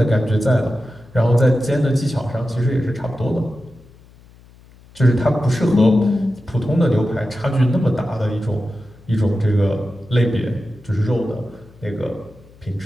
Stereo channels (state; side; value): noise; left; hum, 25 dB below the sound